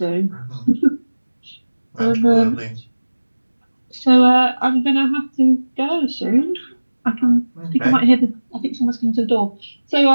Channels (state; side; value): inverted; both; correlation -1.00